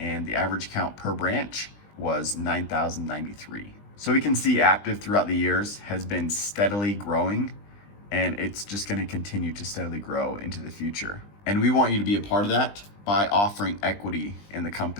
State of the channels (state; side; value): late; right; 20 ms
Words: the average count per branch was 9,093. So we can see Aptive throughout the years has been steadily growing, and it's just going to continue to steadily grow into the future. And we want you to be a part of that by offering equity in the